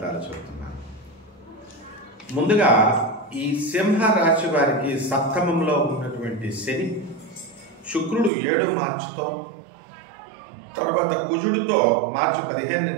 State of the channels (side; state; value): left; drops out; at 8.3 s